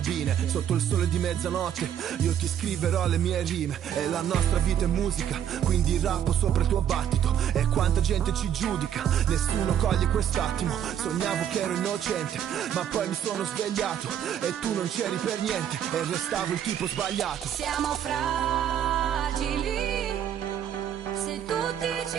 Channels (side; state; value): left; quieter; 9.6 dB